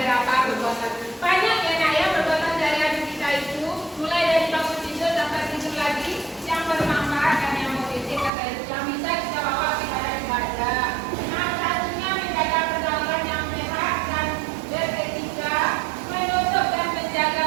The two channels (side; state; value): left; drops out; at 8.3 s